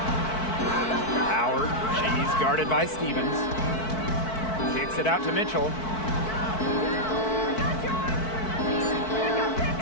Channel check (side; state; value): right; late; 4.6 ms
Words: Howard. She's guarded by Stevens. Kicks it out to Mitchell.